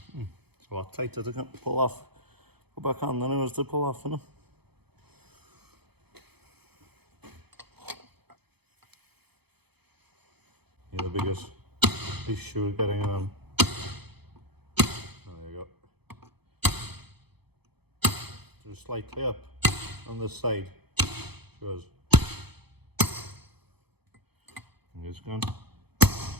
It's a lot tighter to pull off, go back on than it was to pull off, isn't it? Yeah, the biggest issue is getting it on. There you go. Just slightly up on this side. Shows. And it's gone.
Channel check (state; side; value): late; left; 0.97 ms